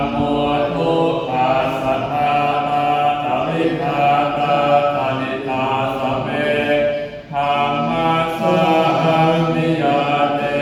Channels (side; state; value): both; identical; correlation 1.00